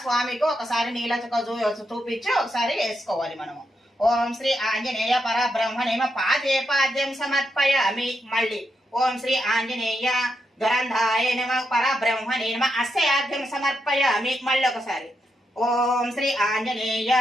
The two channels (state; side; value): normal; both; correlation 0.83